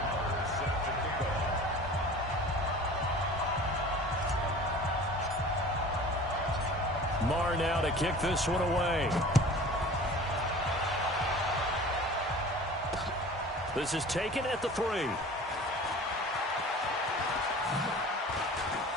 Marr now to kick this one away. This is taken at the 3.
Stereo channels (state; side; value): normal; both; correlation 0.42